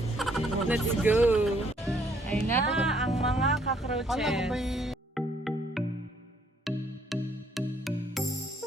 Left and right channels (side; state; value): both; normal; correlation 0.66